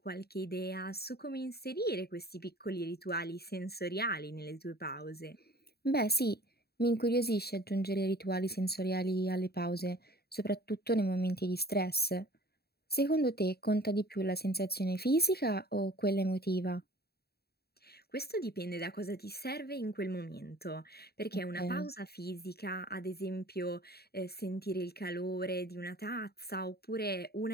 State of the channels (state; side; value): late; right; 0.46 ms